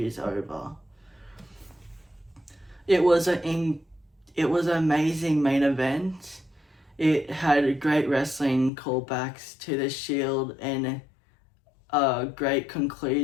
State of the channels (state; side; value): drops out; right; at 8.7 s